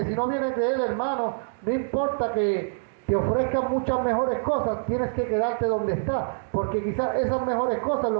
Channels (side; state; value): left; silent; digital silence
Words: si no viene de Él, hermano, no importa que te ofrezcan muchas mejores cosas, tienes que quedarte donde estás, porque quizás esas mejores cosas